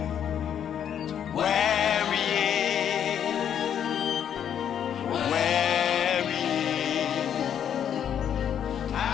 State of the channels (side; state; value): right; quieter; 9.1 dB